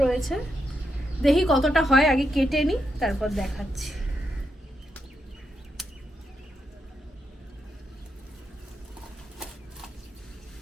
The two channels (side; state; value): both; normal; correlation 0.83